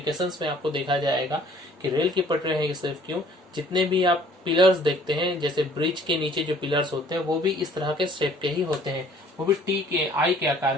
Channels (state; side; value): normal; both; correlation 0.56